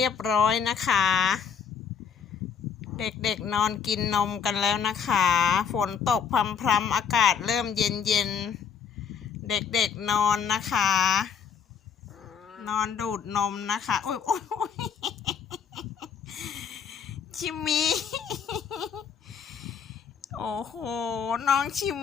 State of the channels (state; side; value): quieter; right; 7.1 dB